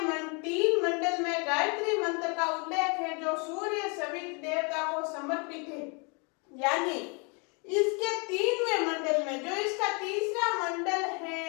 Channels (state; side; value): quieter; right; 33.8 dB